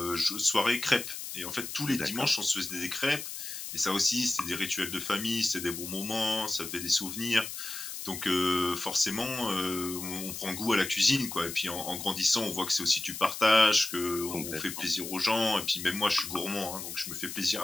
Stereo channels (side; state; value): left; noise; hiss, 8 dB below the sound